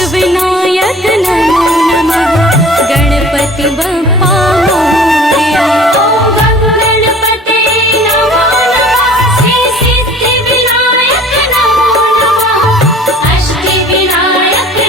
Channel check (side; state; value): both; normal; correlation 0.47